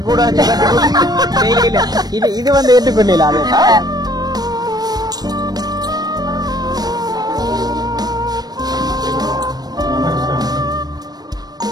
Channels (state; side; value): late; left; 0.19 ms